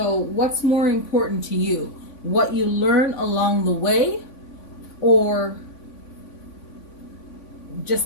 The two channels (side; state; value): right; late; 3.5 ms